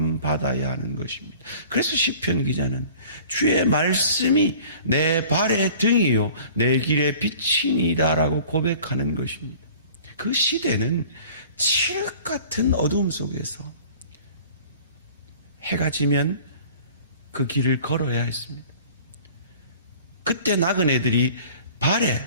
받아야 하는 것입니다. 그래서 시편 기자는 주의 말씀이 내 발의 등이요 내 길의 빛이니다라고 고백하는 것입니다. 그 시대는 칠흑 같은 어두움 속에서 해가 지면 그 길을 걸어야 했습니다. 그때 나그네들이 발에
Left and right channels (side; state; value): both; inverted; correlation -0.47